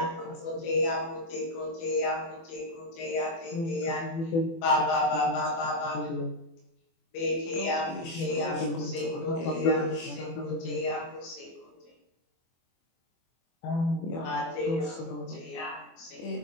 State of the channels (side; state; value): right; late; 24 ms